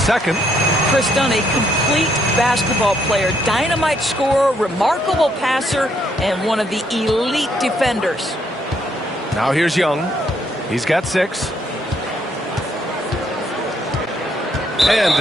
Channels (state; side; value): normal; both; correlation 0.72